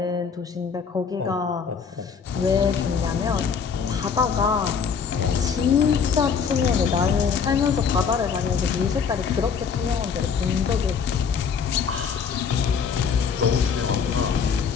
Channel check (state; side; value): quieter; right; 6.3 dB